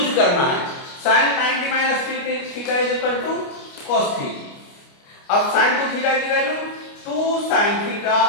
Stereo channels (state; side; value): late; right; 29 ms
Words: करना है। sin 90 minus 3 theta is equal to cos theta. अब sin 2 थीटा की value 2 sin theta